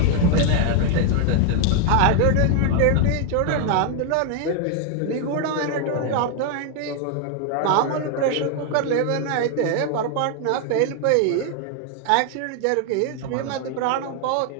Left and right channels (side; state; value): both; different; correlation 0.00